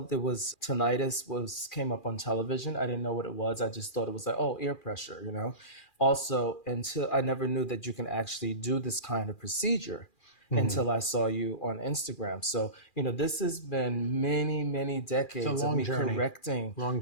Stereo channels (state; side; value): late; right; 2.4 ms